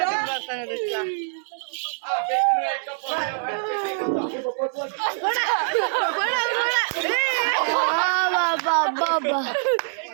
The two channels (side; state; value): left; silent; 62 dB below the other